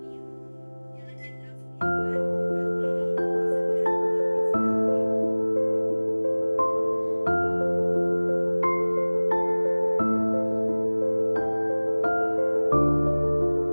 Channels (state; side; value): inverted; both; correlation -1.00